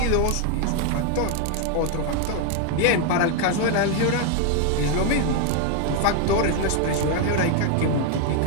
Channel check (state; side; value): different; both; correlation 0.01